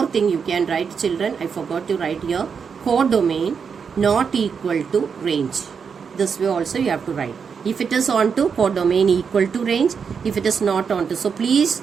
thing you can write, children. I forgot to write here. Codomain not equal to range. This way also you have to write. If it is onto, codomain equal to range. If it is not onto. So please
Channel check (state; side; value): quieter; left; 6.2 dB